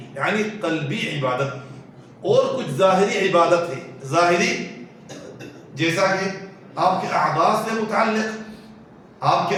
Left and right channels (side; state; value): both; identical; correlation 1.00